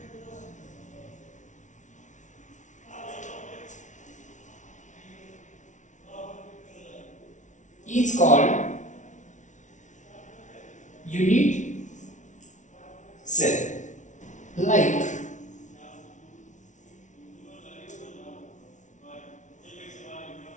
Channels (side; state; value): right; late; 0.36 ms